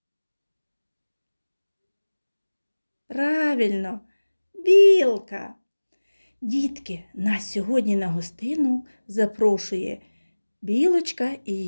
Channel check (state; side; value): inverted; both; correlation -1.00